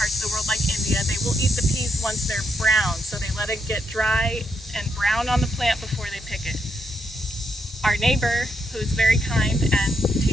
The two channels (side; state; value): both; normal; correlation 0.79